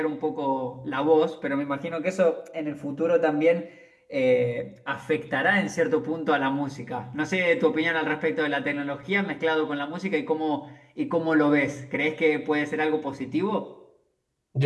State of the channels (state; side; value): identical; both; correlation 1.00